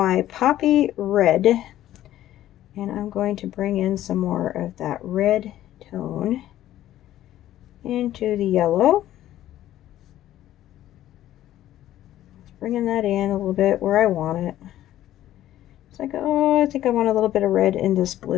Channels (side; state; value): right; quieter; 13.2 dB